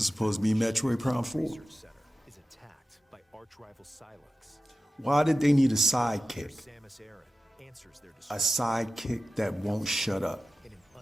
supposed to be Metroid Prime 4. Why did they need a sidekick? A sidekick that won't shut up.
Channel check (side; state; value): both; normal; correlation 0.93